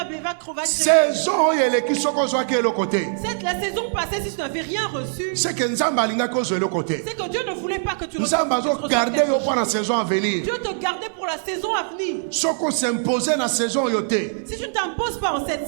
créer. La saison passée, si tu n'avais rien reçu, c'est que Dieu ne voulait pas que tu reçoives. Dieu te gardait pour la saison à venir. Si tu ne t'imposes pas en cette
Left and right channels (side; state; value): left; silent; 64 dB below the other